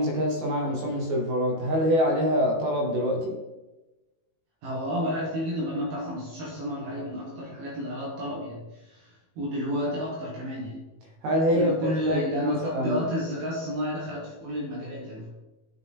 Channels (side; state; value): left; late; 19 ms